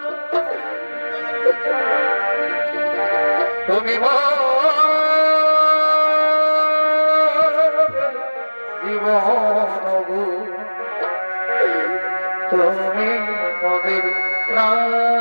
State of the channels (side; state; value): both; inverted; correlation -1.00